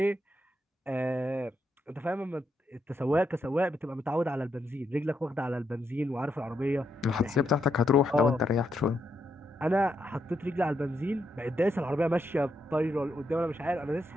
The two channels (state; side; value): normal; both; correlation 0.80